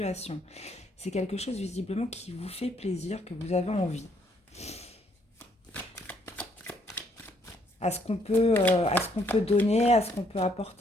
C'est quelque chose visiblement qui vous fait plaisir, que vous avez envie. À ce qu'on peut donner, à ce qu'on peut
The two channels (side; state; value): both; normal; correlation 0.69